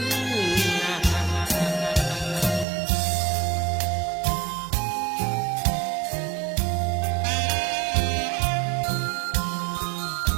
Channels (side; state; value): left; drops out; at 2.7 s